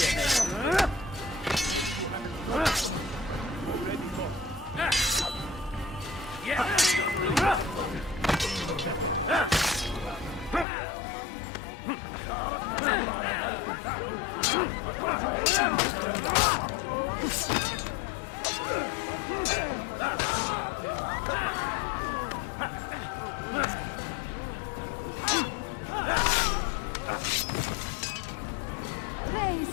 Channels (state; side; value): drops out; right; at 10.7 s